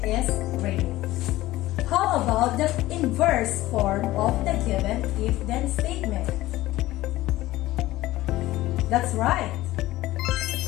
is raining. How about the inverse form of the given if-then statement? That's right.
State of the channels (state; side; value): quieter; right; 16.8 dB